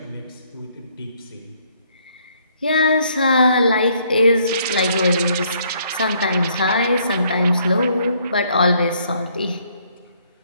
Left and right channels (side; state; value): both; inverted; correlation -0.67